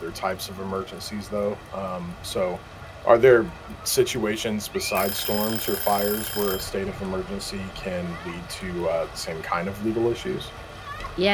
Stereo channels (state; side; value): identical; both; correlation 1.00